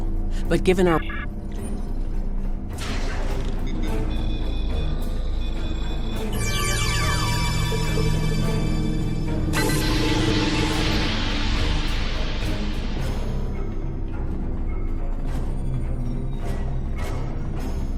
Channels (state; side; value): identical; both; correlation 1.00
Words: But given our...